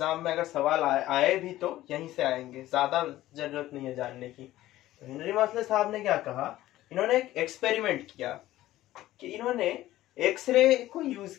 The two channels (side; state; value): right; quieter; 15.2 dB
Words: में अगर सवाल आए भी तो यहीं से आएंगे, ज्यादा जरूरत नहीं है जानने की। तो हेनरी मॉसले साहब ने क्या कहा, इन्होंने एक एक्सपेरिमेंट किया कि इन्होंने एक्सरे को यूज